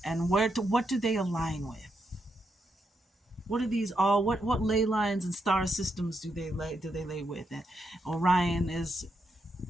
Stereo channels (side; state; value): both; normal; correlation 0.81